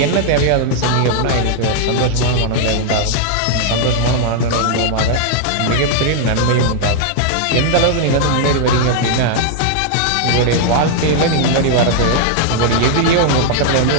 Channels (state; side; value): different; both; correlation -0.01